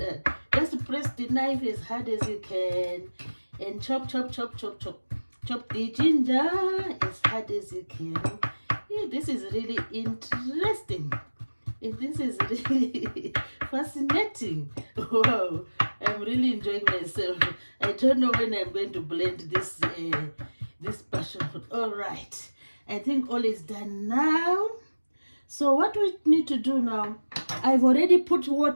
Just press the knife as hard as you can and chop the ginger as hard as you can. Yeah, this is really interesting. This is really fascinating. Wow, I'm really enjoying myself. I don't know when I'm going to blend this passion fruit. All right, I think all is done now. So what we need to do now, I've already put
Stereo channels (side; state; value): both; inverted; correlation -1.00